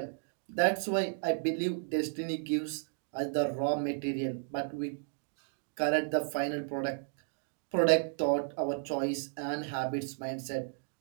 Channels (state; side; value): silent; left; digital silence